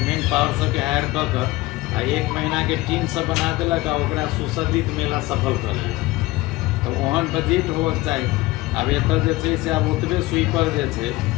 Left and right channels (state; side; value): quieter; right; 19.5 dB